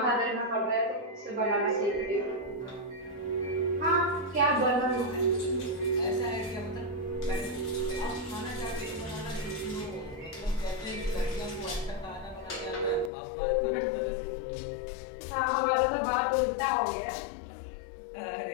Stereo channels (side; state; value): right; drops out; at 13.1 s